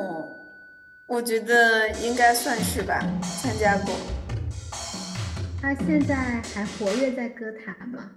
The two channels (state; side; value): identical; both; correlation 1.00